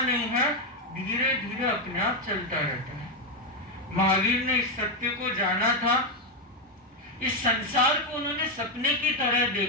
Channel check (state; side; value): normal; both; correlation 0.05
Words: नहीं है, धीरे धीरे अपने आप चलता रहता है। महावीर ने इस सत्य को जाना था, इस संसार को उन्होंने सपने की तरह